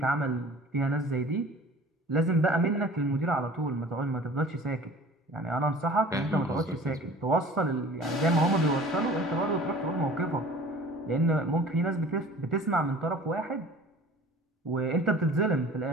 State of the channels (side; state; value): both; normal; correlation 0.45